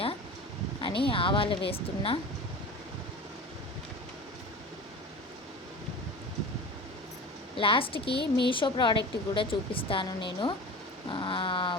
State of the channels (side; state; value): both; normal; correlation 0.35